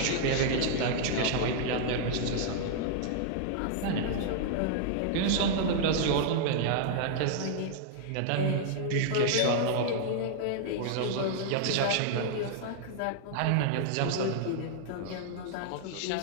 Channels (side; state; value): both; different; correlation -0.01